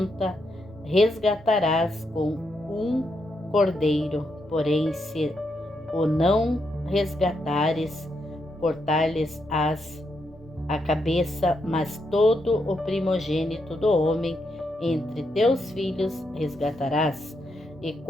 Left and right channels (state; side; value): normal; both; correlation 0.81